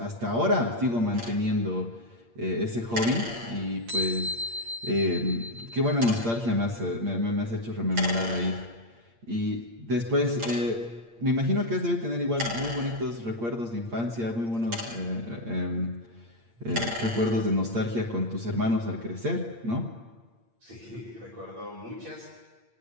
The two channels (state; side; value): late; left; 8.6 ms